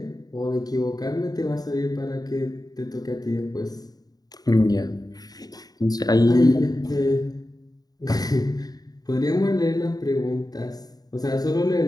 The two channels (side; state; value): right; late; 0.18 ms